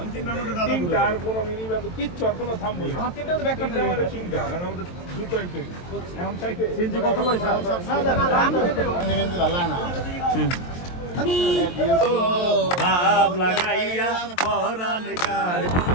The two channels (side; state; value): right; late; 23 ms